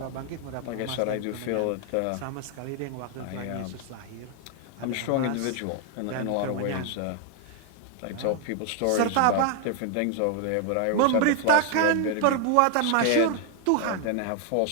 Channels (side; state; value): both; different; correlation 0.00